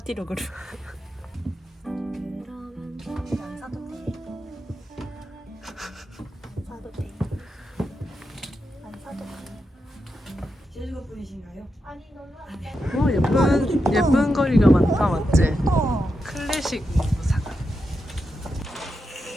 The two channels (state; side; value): normal; both; correlation 0.87